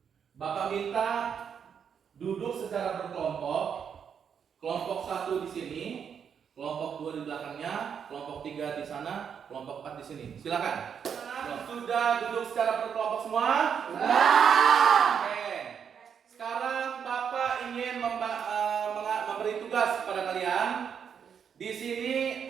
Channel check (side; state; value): left; quieter; 7.4 dB